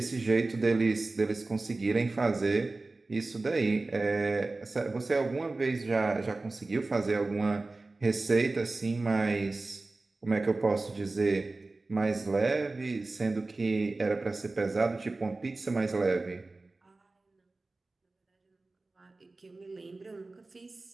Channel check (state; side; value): quieter; left; 3.3 dB